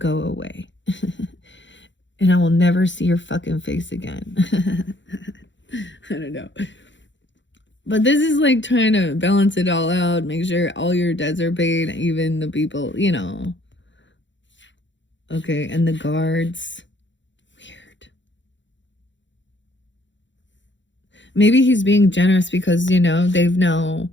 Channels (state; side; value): late; right; 0.54 ms